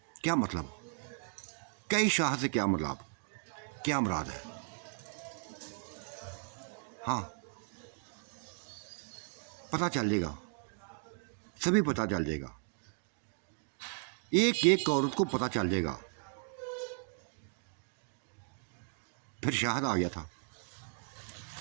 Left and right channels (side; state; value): left; silent; 54 dB below the other